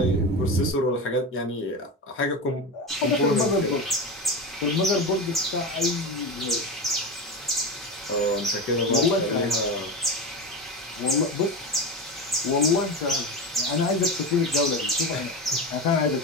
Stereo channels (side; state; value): both; normal; correlation 0.22